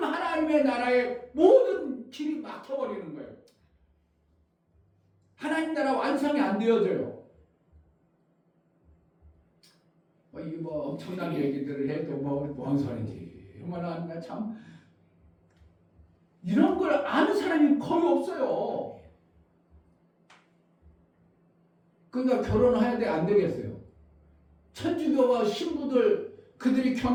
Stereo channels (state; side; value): identical; both; correlation 1.00